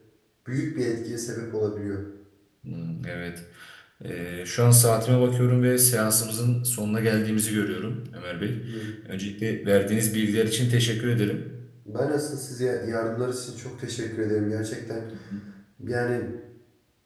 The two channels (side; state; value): both; identical; correlation 1.00